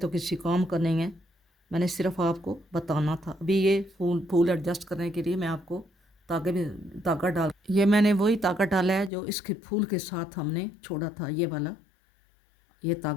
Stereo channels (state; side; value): drops out; right; at 9.1 s